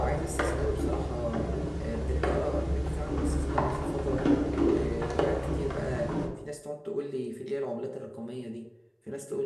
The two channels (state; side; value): identical; both; correlation 1.00